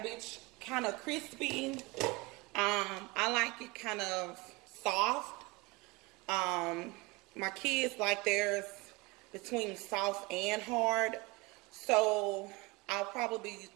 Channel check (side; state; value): left; quieter; 24.5 dB